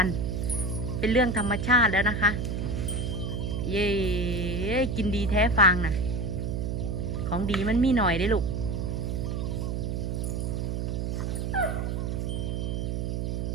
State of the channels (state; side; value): noise; right; hum, 1 dB below the sound